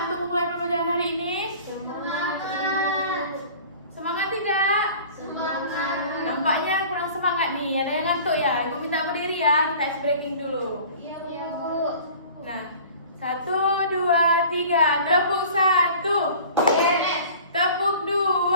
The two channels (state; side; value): inverted; both; correlation -0.45